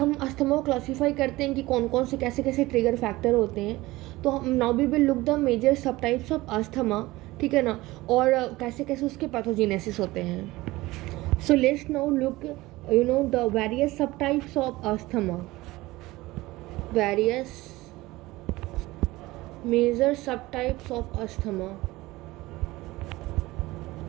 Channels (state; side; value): quieter; left; 19.4 dB